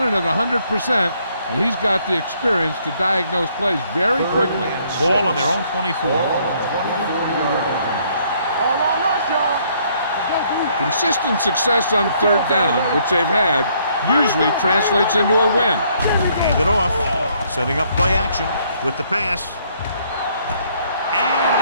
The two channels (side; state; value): both; inverted; correlation -0.67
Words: at 100%, and he's got the experience to diagnose plays very quickly. Ball on their own 24. All on us, y'all. Consistent success on third down, which they've had, usually translates into a win. Hand it off. Setting up play action with the pass.